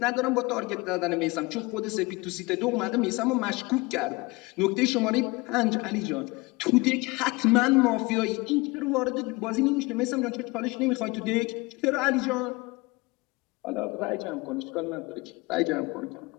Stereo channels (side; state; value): right; quieter; 24.1 dB